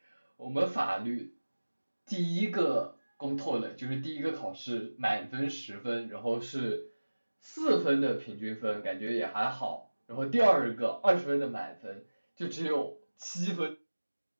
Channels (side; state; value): both; inverted; correlation -1.00